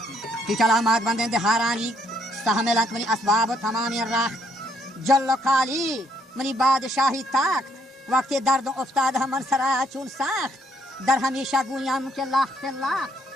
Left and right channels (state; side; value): normal; both; correlation 0.69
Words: کی چلامات بندیں دہارانی استحملت منی اسباب تمامی راخ جل و کالی منی بادشاہی تاکت وقت درد افتاد من سرا چون ساخت در ہمیشہ گویاں کے لاخت لاخت